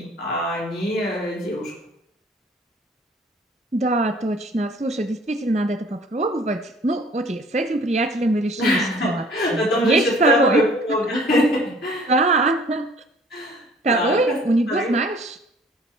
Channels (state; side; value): normal; both; correlation 0.54